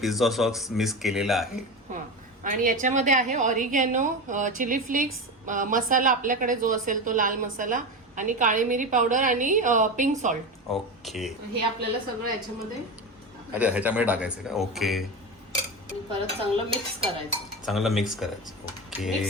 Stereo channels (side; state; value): both; normal; correlation 0.22